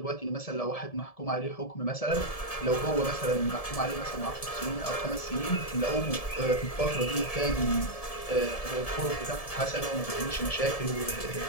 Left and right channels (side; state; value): right; late; 1.7 ms